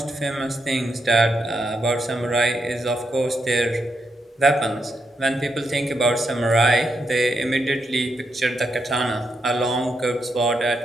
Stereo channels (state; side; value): normal; both; correlation 0.82